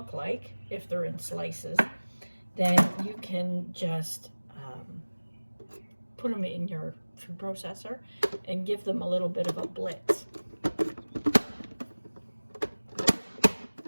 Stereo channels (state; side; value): inverted; both; correlation -1.00